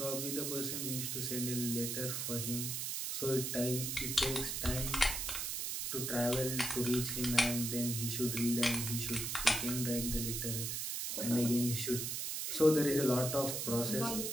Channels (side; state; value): right; noise; hiss, 2 dB below the sound